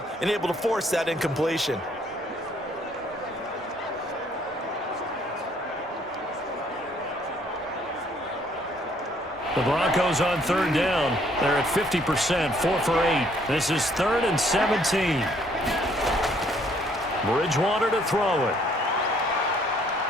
and able to force that incompletion. The Broncos on third down. They're at 50%, 4 for 8. This is 3rd and 17. Bridgewater to throw it.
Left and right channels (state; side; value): normal; both; correlation 0.64